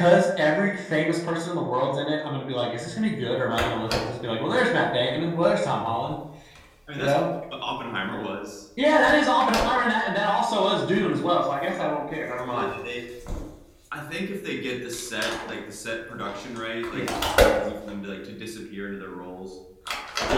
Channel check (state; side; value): identical; both; correlation 1.00